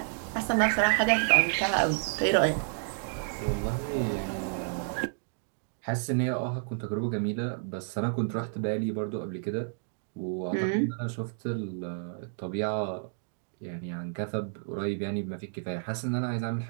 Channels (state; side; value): silent; left; digital silence